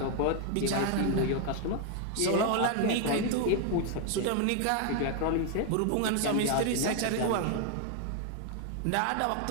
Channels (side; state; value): both; different; correlation 0.00